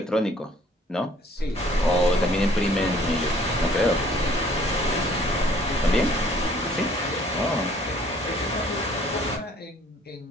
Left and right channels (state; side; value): normal; both; correlation 0.58